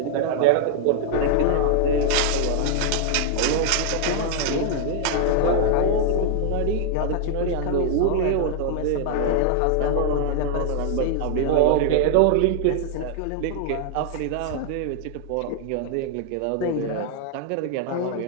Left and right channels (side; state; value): both; different; correlation 0.00